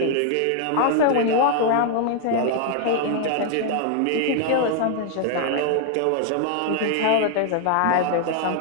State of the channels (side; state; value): both; different; correlation 0.00